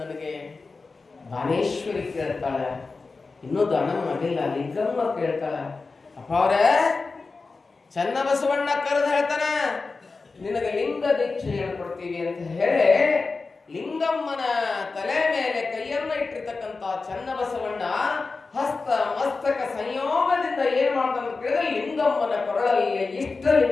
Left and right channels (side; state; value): right; quieter; 4.1 dB